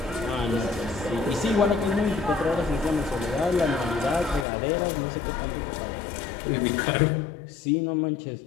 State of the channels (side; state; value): right; drops out; at 4.5 s